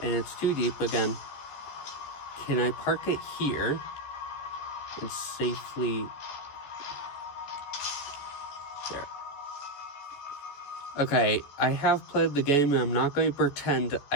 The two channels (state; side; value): late; right; 14 ms